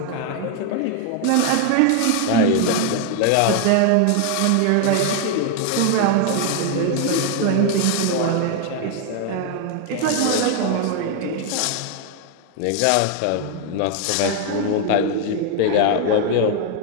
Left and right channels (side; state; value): both; different; correlation 0.00